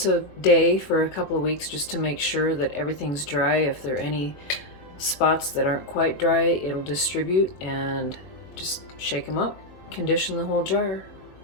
a day for a couple of weeks just to make sure that everything's dry. If there are any spots that aren't quite dry, it'll distribute, and just shake them up. Condition the whole jar.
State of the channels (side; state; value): right; late; 21 ms